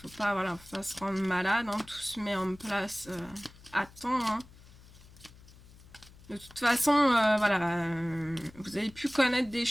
Faut pas se rendre malade. Hein. Tout se met en place à temps. Hein. De toute façon, vous avez pu connaître des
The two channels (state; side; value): noise; left; hum, 22 dB below the sound